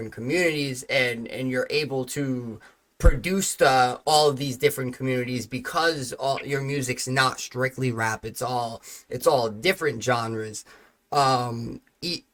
communities, and you're able to produced all of these different communities because all your music's not strictly rap. It's all different genres.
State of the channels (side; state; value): both; identical; correlation 1.00